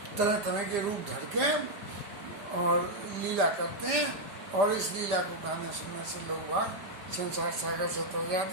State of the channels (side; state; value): left; late; 5.0 ms